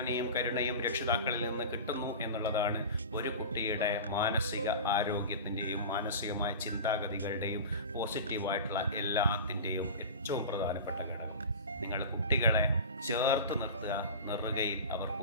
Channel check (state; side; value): inverted; both; correlation -0.32